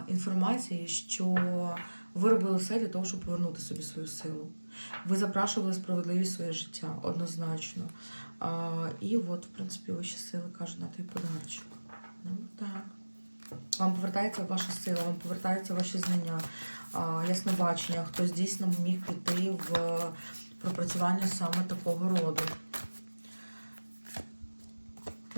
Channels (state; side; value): inverted; both; correlation -1.00